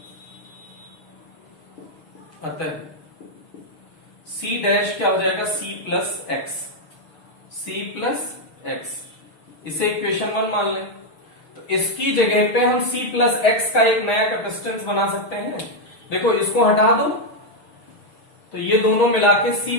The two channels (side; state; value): right; late; 6.5 ms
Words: अतः सी डैश क्या हो जाएगा, C plus X, C plus X, इसे इक्वेशन 1 मान लें। तो इसकी जगह पे हम सी प्लस एक्स का एक नया कैपेसिटेंस बना सकते हैं। देखो इसको हटा दो तो ये दोनों मिला के सी